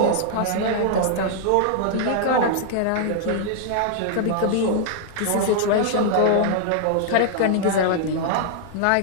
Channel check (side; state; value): both; different; correlation -0.01